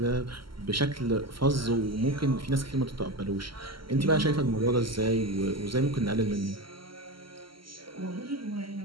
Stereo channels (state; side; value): late; left; 0.74 ms